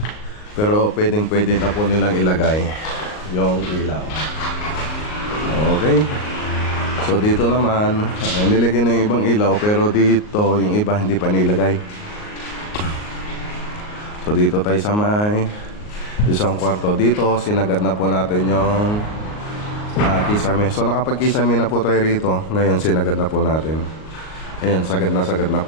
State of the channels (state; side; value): late; right; 38 ms